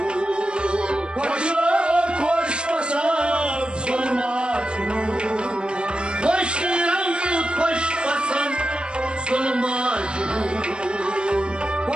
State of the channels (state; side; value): late; left; 0.054 ms